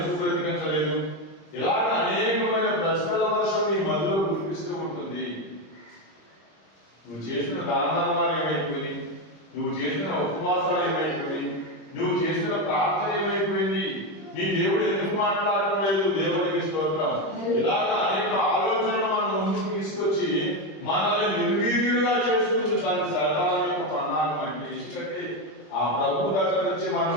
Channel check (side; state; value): right; late; 25 ms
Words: బ్రతికించలేదు? ఇలాగ అనేకమైన ప్రశ్నల వర్షం నీ మధ్యలో కురిపిస్తూ ఉంటుంది. నువ్వు చేసిన దాన ధర్మాలు ఏమైపోయింది? నువ్వు చేసిన ఉపవాసాలు ఏమైపోయింది? నువ్వు చేసిన ప్రార్థన ఏమైపోయింది? నీ దేవుడు ఎందుకు మాట్లాడటం లేదు? దేవునికి స్తోత్రం. ఇలాగ అనేక ఆలోచనలు మనం ముందుకు తీసుకొచ్చి మనల్ని నిర్వీర్యులుగా చేసుకుంది తన శాతాల యొక్క ప్రణాళిక. అంటే ఎందుకంటే ఆ ప్రభు దగ్గర నుంచి